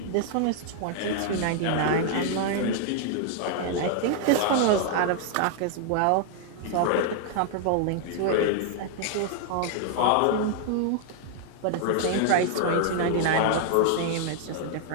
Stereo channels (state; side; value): different; both; correlation 0.00